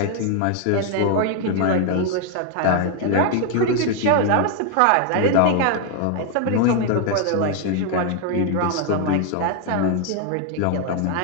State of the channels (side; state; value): both; different; correlation 0.00